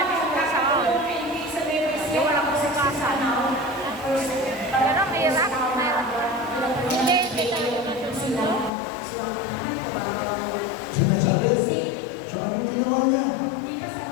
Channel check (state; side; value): drops out; right; at 8.7 s